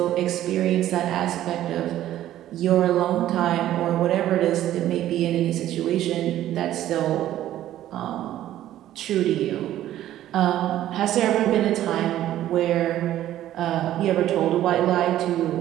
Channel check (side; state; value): left; quieter; 13.0 dB